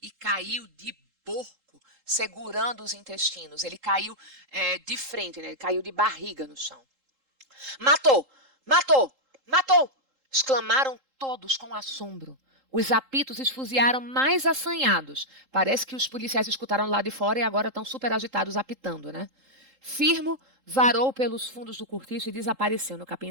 e caiu de porco, segurando os intestinos. Ele caiu de frente, né? Ele caiu de barriga no chão. Matou! Matou! Matou! Exclamaram todos com assombro. Os apitos esfuziaram mais assanhados. Parece que os policiais escutaram lá de fora e agora estão super agitados apitando, né? Firmo varou pelos fundos do cortiço e desapareceu no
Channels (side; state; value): left; late; 3.8 ms